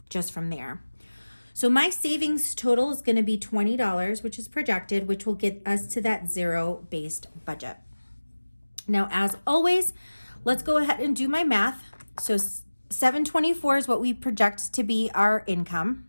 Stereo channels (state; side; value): inverted; both; correlation -1.00